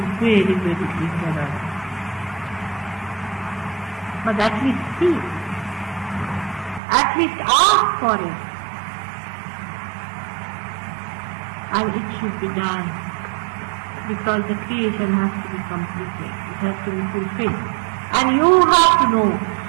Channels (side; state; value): left; drops out; at 6.8 s